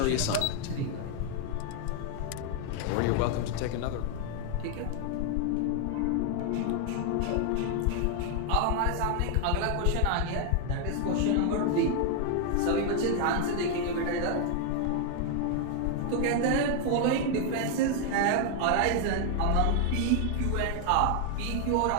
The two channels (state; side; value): different; both; correlation 0.00